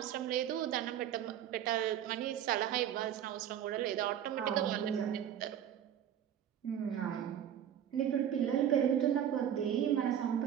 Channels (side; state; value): left; quieter; 10.0 dB